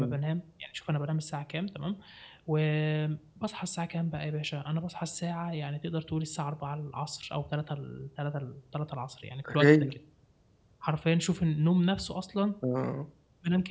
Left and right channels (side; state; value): both; identical; correlation 1.00